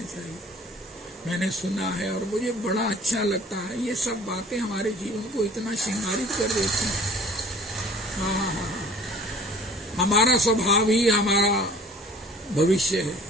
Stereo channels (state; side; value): normal; both; correlation 0.50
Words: चाहिए, मैंने सुना है और मुझे बड़ा अच्छा लगता है। ये सब बातें हमारे जीवन को इतना श्रृंगारित कर देती हैं। हमारा स्वभाव ही हमारा भविष्य है,